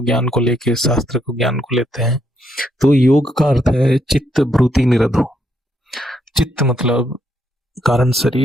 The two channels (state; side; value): normal; both; correlation 0.75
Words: ज्ञान को लेके, शास्त्र को ज्ञान को लेते हैं। तो योग का अर्थ है चित्त वृत्ति निरोधो। चित्त मतलब कारण